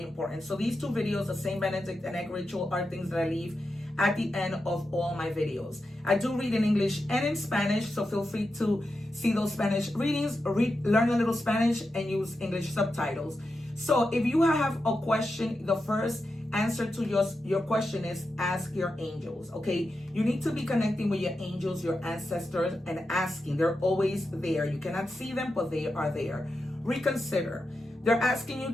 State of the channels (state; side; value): normal; both; correlation 0.89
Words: important. So these 2 videos, the Saint Benedict and egg ritual, are things that I leave at the end of all my videos. I do read in English and in Spanish, so feel free to see those Spanish readings, learn a little Spanish, and use English subtitles. So if you have a question, the first answer to your question is ask your angels, okay? You need to be connecting with your angels, your ancestors, and asking. They're always there. You cannot see them, but they are there. Reconsider. They're asking you